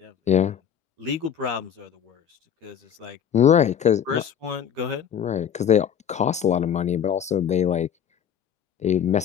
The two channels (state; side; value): quieter; right; 8.7 dB